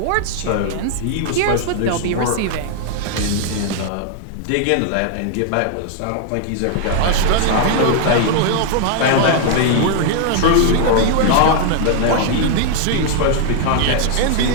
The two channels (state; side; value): different; both; correlation 0.00